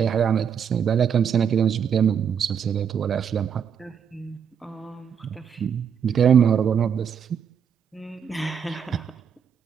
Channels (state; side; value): quieter; left; 7.6 dB